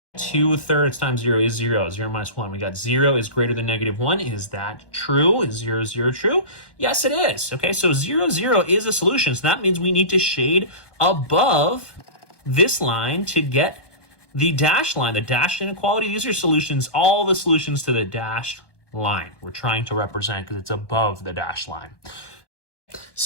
2/3 times 0 is 0. 0 minus 1. We got 0 is greater than -1. Is that true? Is 0, 0 true? Yes, it is. Okay, so 0, 0 is a solution. So that means we need to shade above this line to get the dashed line, the dashed inequality. These are solutions, all the solutions to the dashed line we're trying to represent because it's above the dashed line.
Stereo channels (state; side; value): late; right; 1.2 ms